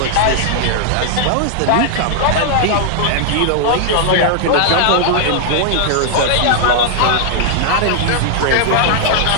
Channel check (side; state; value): both; different; correlation 0.00